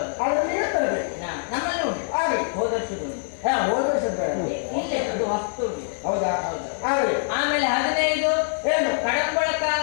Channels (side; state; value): right; silent; 58 dB below the other